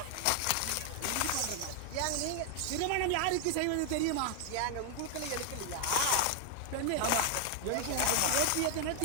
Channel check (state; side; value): different; both; correlation 0.00